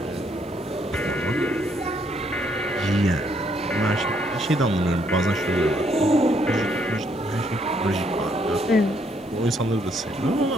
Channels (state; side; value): noise; left; hiss, 29 dB below the sound